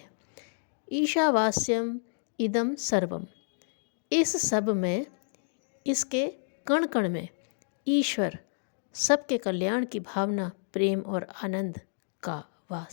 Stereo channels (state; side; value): silent; right; digital silence